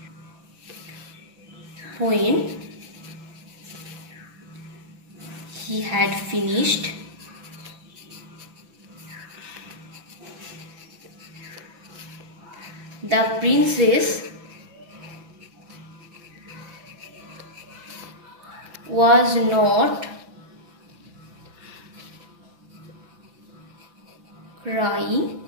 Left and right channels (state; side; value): late; left; 6.0 ms